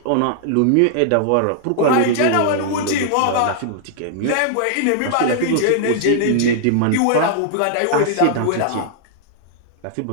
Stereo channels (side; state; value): both; different; correlation -0.01